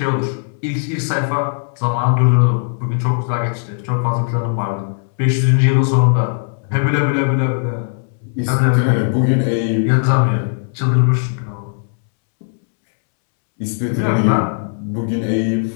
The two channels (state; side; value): silent; right; 68 dB below the other